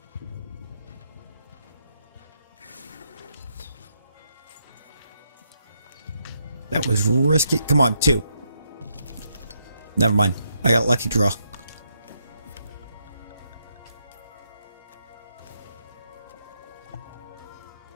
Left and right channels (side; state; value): both; inverted; correlation -0.78